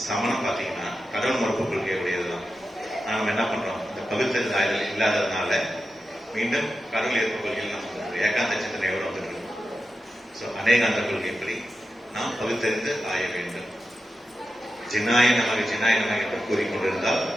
சமணம் பாத்தீங்கன்னா கடவுள் மறுப்பு கொள்கை உடையதுதான். நாம என்ன பண்றோம்? இந்த பகுத்தறிந்து ஆய்தல் இல்லாததுனால மீண்டும் கடவுள் ஏற்பு கொள்கையில் நம்ம ஏகாந்த சிந்தனையோடு வந்துட்டு இருக்கோம். அநேகாந்த கொள்கைப்படி நாம் பகுத்தறிந்து ஆய வேண்டும். ஜினாய நமக என்று கூறிக்கொண்டிருந்தால்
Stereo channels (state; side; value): normal; both; correlation 0.90